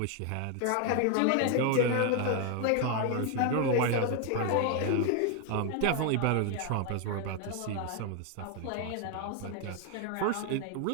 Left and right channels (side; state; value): both; different; correlation 0.01